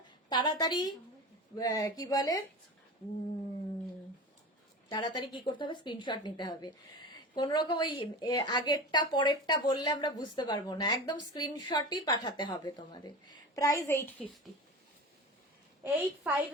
তাড়াতাড়ি কি বলে তাড়াতাড়ি কি করতে হবে, স্ক্রিনশট নিতে হবে। কোন রকম ওই আগেরটা পরেরটা বললে আমরা বুঝতে পারবো না, একদম স্ক্রিনশটই পাঠাতে হবে তোমাদের। প্রাইস 850,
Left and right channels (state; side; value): normal; both; correlation 0.30